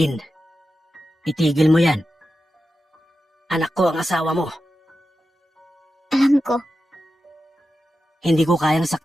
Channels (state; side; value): normal; both; correlation 0.91